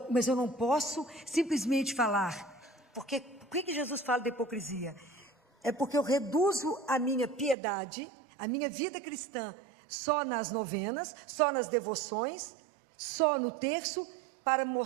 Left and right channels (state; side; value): drops out; left; at 7.6 s